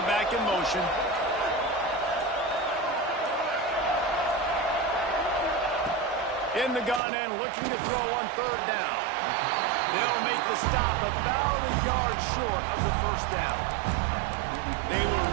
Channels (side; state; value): left; drops out; at 7.0 s